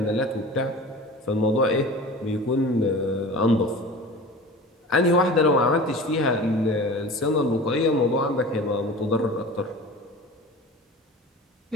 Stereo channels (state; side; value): normal; both; correlation 0.37